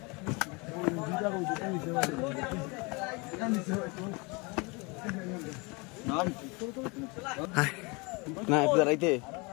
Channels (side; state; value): right; quieter; 28.5 dB